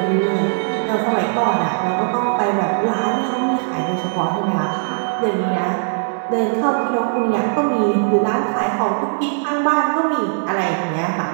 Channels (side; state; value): left; silent; digital silence